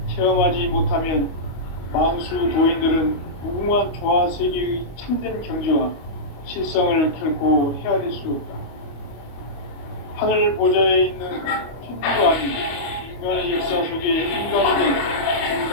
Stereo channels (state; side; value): late; right; 25 ms